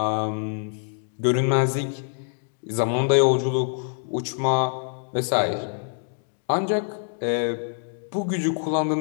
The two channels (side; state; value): right; silent; digital silence